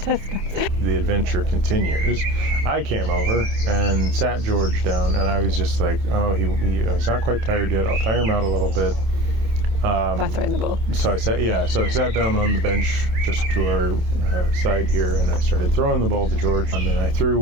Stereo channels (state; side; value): late; left; 27 ms